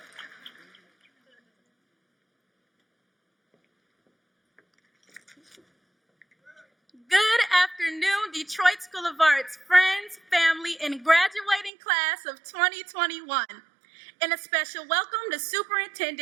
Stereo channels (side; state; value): left; drops out; at 11.7 s